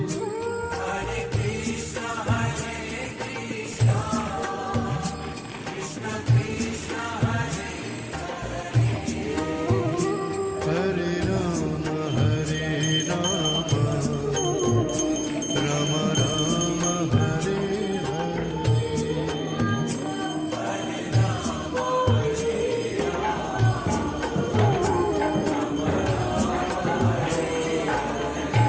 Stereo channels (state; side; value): identical; both; correlation 1.00